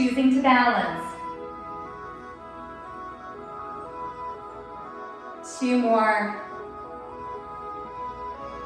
to balance. 2 more.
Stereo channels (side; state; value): both; identical; correlation 1.00